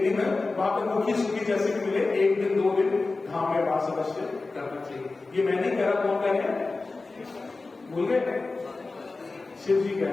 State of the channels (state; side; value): quieter; right; 3.6 dB